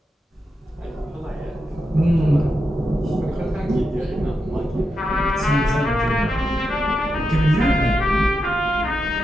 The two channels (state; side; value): normal; both; correlation 0.86